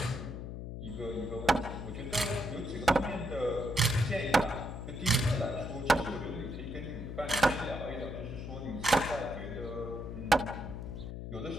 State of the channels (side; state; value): left; noise; hum, 7 dB below the sound